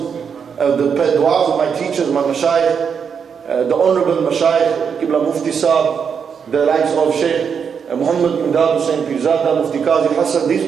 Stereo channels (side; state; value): left; quieter; 6.8 dB